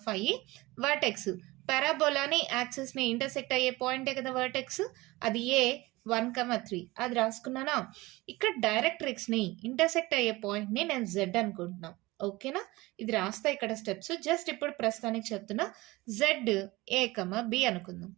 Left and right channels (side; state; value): left; quieter; 20.9 dB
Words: వర్టెక్స్. పారాబోలాని యాక్సిస్ ని ఇంటర్సెక్ట్ అయ్యే పాయింటే కదా వర్టెక్స్, అది ఏ 1,3 అది రాసుకున్నానా. ఇక్కడ డైరెక్ట్రిక్స్ ని ఇంటర్సెక్ట్ అయ్యే పాయింట్ ని నేను జెడ్ అనుకుంటున్నా. ఓకేనా, ఇది రాస్తా ఇక్కడ స్టెప్స్. జస్ట్ ఇప్పుడు ప్రస్తుతానికి చెప్తున్నా. జెడ్ ఏ బి అనుకుందాం.